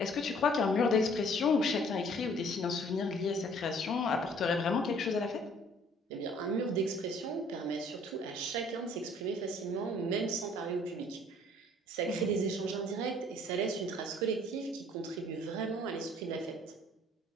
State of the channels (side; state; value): both; normal; correlation 0.57